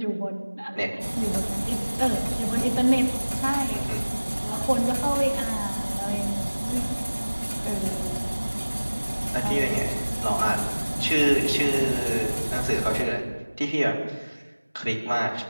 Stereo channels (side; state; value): both; inverted; correlation -1.00